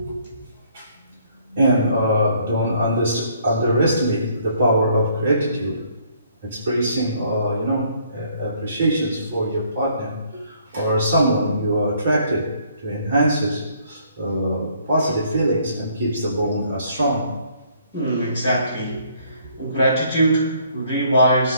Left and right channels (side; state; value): both; inverted; correlation -0.64